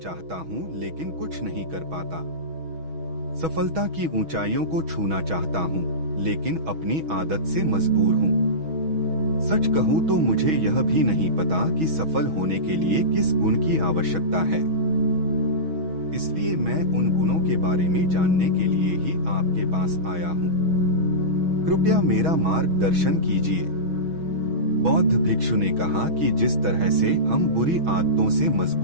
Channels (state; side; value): late; left; 6.2 ms